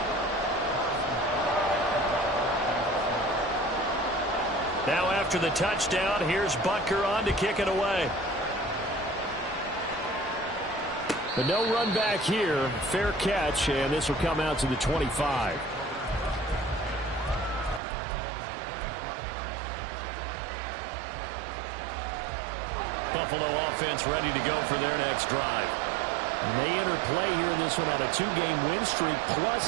Now after the touchdown, here's Butker on to kick it away. But no run back here. Fair catch, and this will come out to the 25. Buffalo offense ready to go for their next drive. And they enter play here in this one on a 2-game win streak,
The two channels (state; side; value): drops out; left; at 17.8 s